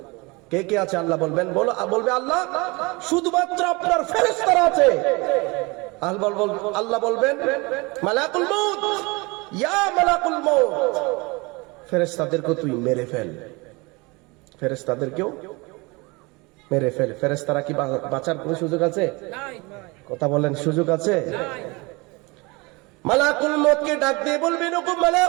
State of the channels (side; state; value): left; quieter; 25.9 dB